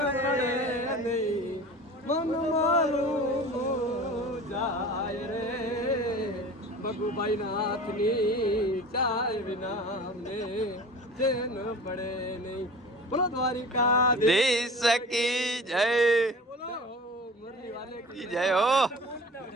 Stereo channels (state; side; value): normal; both; correlation 0.38